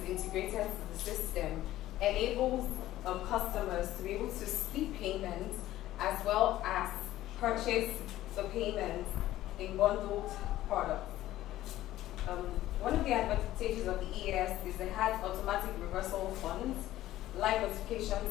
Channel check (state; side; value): quieter; right; 14.6 dB